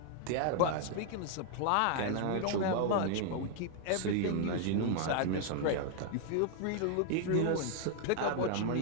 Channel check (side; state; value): both; different; correlation 0.00